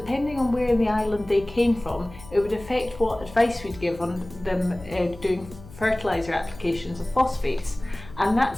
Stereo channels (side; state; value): left; noise; hum, 18 dB below the sound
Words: on where in the island they came from, it would affect what advice we'd give on them doing fertiliser applications of phosphates. And